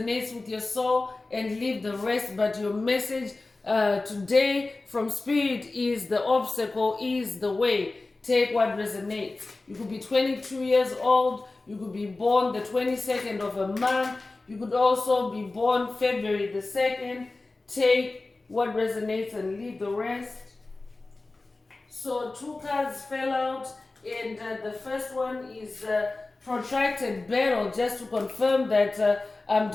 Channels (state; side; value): quieter; right; 3.3 dB